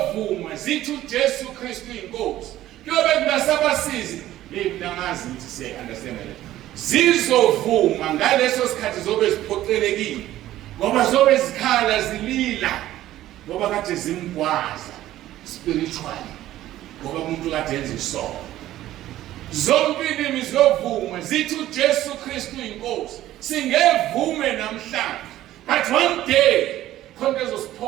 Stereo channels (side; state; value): left; quieter; 14.1 dB